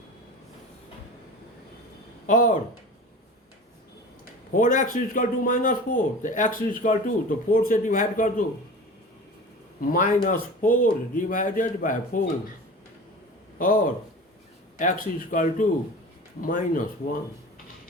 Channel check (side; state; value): both; normal; correlation 0.36